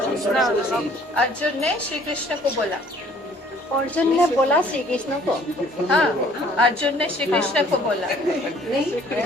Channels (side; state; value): both; normal; correlation 0.57